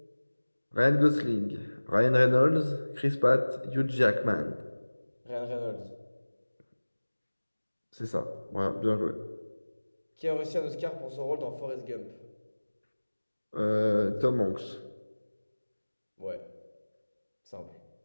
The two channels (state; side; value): inverted; both; correlation -1.00